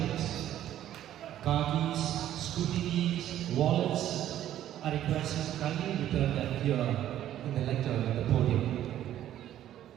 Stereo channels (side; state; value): left; quieter; 12.0 dB